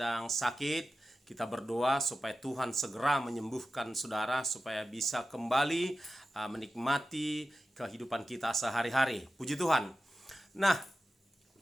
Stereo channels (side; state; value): both; normal; correlation 0.93